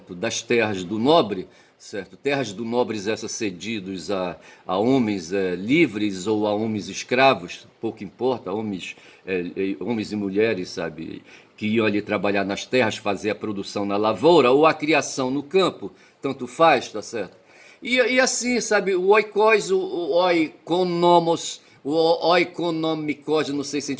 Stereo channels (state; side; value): identical; both; correlation 1.00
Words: das terras do nobre, certo, terras do nobres essas cedidos a homens livres ou a homens escravos, pouco importa, homens e mulheres, sabe, que iam ali trabalhar nas terras, fazer a produção na lavoura ou a criação no campo, tanto faz, tá certo? E assim, sabe, o oikos, o oikonomos, o oikonomikos, não sei se a